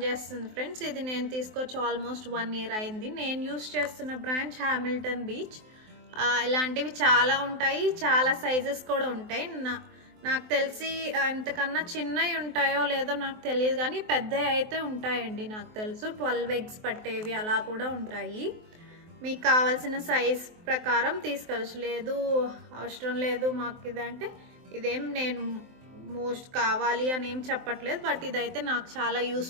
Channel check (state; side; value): late; left; 23 ms